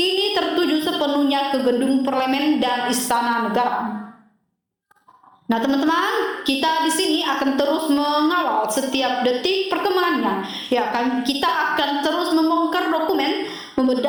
tertuju sepenuhnya ke gedung parlemen dan istana negara. Nah teman-teman, kita di sini akan terus mengawal setiap detik perkembangannya. Ya kan, kita akan terus membongkar dokumen,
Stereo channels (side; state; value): both; identical; correlation 1.00